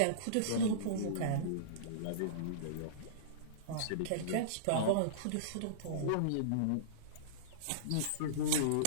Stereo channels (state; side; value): different; both; correlation -0.04